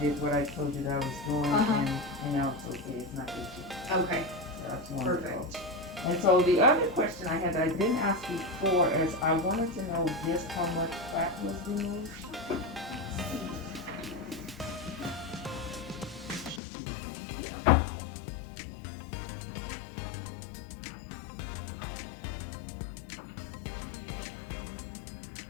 did what I told you that I was doing, and now it's okay. It's not itchy. Okay. That's wonderful. Perfect. And so the other question I had that I didn't ask before is I wanted to know just how much fat was removed.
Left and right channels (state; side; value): drops out; right; at 16.6 s